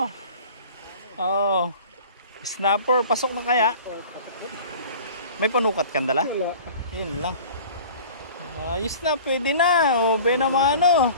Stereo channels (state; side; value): inverted; both; correlation -0.43